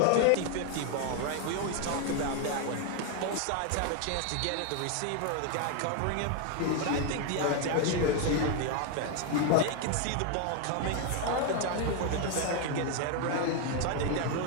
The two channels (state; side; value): different; both; correlation 0.01